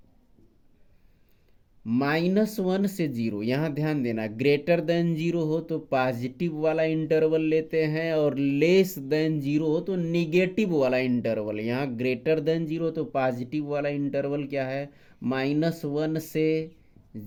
-1 से 0। यहाँ ध्यान देना, ग्रेटर देन 0 हो तो पॉजिटिव वाला इंटरवल लेते हैं, और लेस देन 0 हो तो निगेटिव वाला इंटरवल। यहाँ ग्रेटर देन 0 तो पॉजिटिव वाला इंटरवल क्या है, -1 से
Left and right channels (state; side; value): identical; both; correlation 1.00